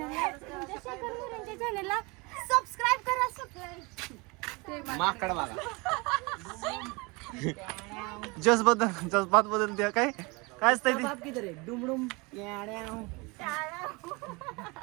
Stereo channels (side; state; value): left; quieter; 27.3 dB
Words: तुमच्या शेखर मुलांच्या चॅनलला सबस्क्राईब करा. जज्बात बदल द्या. काय काय असतंय ते? डुमडुम